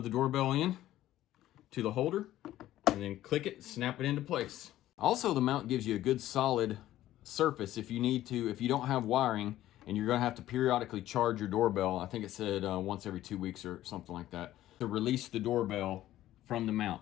the doorbell in to the holder and then click it, snap it into place. Also, the mount gives you a good solid surface if you need to, if you don't have wiring and you're gonna have to periodically charge your doorbell. I think it said once every 2 weeks or something like that, to release the doorbell from the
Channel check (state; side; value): quieter; right; 14.0 dB